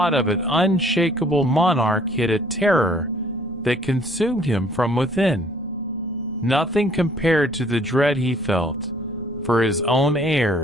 of an unshakable monarch hid a terror that consumed him from within. Nothing compared to the dread he felt for his own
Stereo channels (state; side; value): normal; both; correlation 0.59